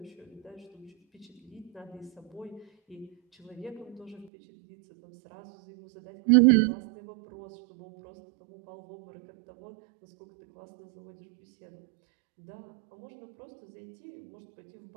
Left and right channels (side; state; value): left; drops out; at 4.3 s